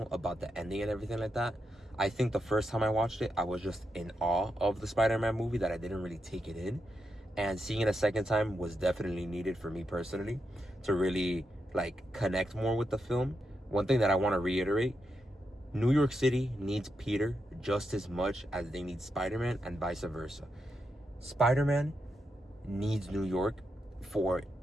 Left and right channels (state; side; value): normal; both; correlation 0.85